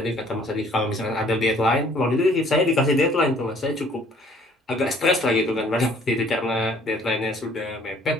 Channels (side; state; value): both; normal; correlation 0.57